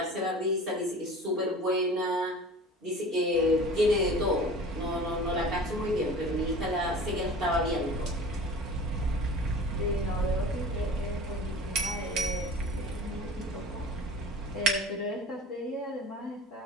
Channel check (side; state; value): both; normal; correlation 0.40